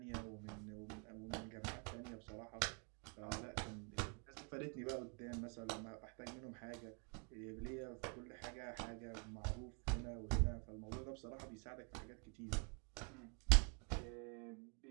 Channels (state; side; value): quieter; left; 34.8 dB